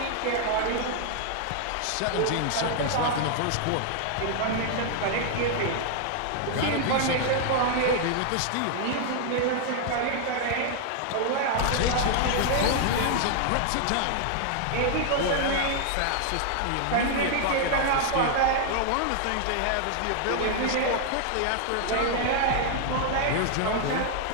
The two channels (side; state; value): both; different; correlation 0.00